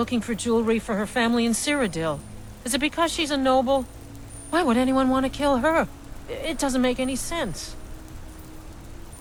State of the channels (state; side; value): identical; both; correlation 1.00